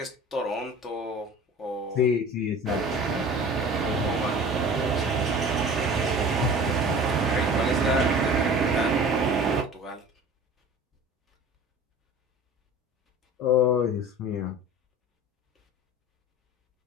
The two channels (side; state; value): both; normal; correlation 0.41